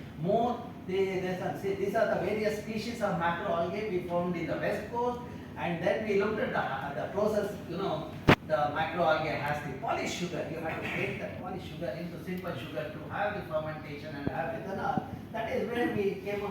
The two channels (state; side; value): identical; both; correlation 1.00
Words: more. These are the various species of macroalgae we found in the west coast, and then we looked at the process. The macroalgae has the polished sugar. You have to break that polished sugar into simple sugar to have the fermentation and have ethanol. That is where we came